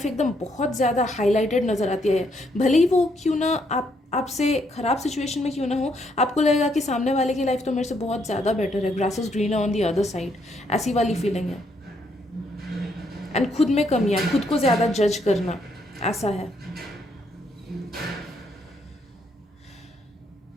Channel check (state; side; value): normal; both; correlation 0.73